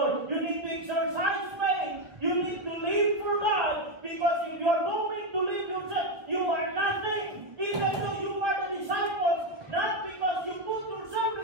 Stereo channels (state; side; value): late; left; 1.8 ms